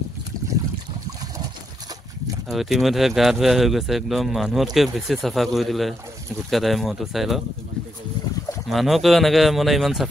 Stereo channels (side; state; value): both; normal; correlation 0.80